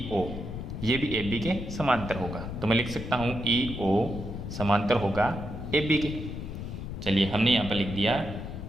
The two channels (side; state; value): left; noise; rumble, 7 dB below the sound